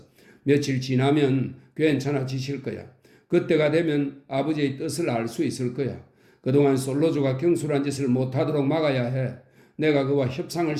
며칠 지나면 괜찮아지실 거야. 그때가 되면 아버지의 뜻을 알 수 있을 거야. 그동안 솔로조가 경솔한 짓을 못하도록 막아야 해. 내가 그와 협상을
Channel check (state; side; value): identical; both; correlation 1.00